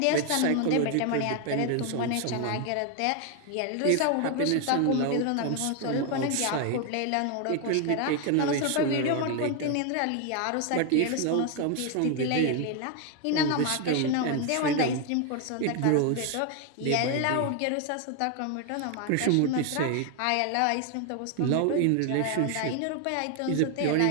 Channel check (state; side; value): different; both; correlation 0.01